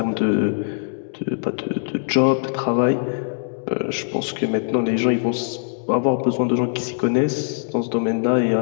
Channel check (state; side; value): silent; right; digital silence